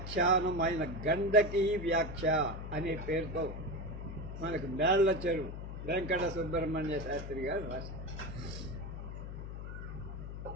ఆయన గండకీ వ్యాఖ్య అనే పేరుతో మనకు మేళ్ల చెరువు వెంకట సుబ్రహ్మణ్య శాస్త్రి గారు రాశారు.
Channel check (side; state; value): left; noise; hum, 8 dB below the sound